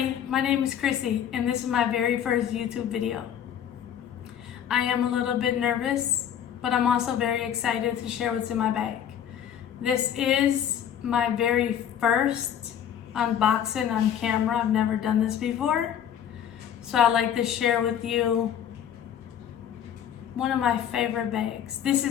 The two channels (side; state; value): right; quieter; 9.5 dB